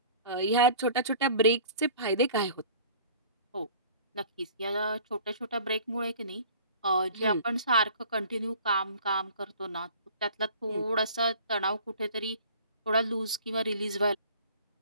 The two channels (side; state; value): both; inverted; correlation -0.47